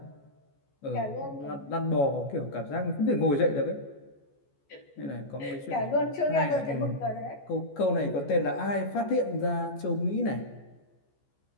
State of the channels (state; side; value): late; right; 14 ms